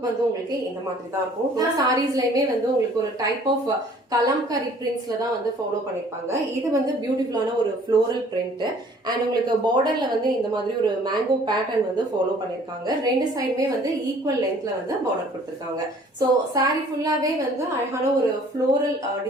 வந்து உங்களுக்கு இந்த மாதிரி தான் இருக்கும். எல்லா சாரீஸ்லயுமே வந்து உங்களுக்கு ஒரு டைப் ஆஃப் கலம்கரி பிரிண்ட்ஸ்ல தான் வந்து ஃபாலோ பண்ணிருப்பாங்க. இது வந்து பியூட்டிஃபுல்லான ஒரு ஃப்ளோரல் பிரிண்ட் அண்ட் உங்களுக்கு பார்டர்ல வந்து இந்த மாதிரி ஒரு மேங்கோ பேட்டர்ன் வந்து ஃபாலோ பண்ணிருக்காங்க. ரெண்டு சைடுமே வந்து ஈக்குவல் லென்த்ல வந்து பார்டர் கொடுத்திருக்காங்க. சோ சாரி ஃபுல்லாவே வந்து அழகான ஒரு ஃப்ளோரல்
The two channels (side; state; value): both; normal; correlation 0.55